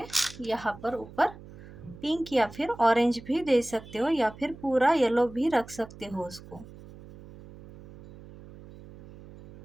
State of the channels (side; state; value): right; noise; hum, 18 dB below the sound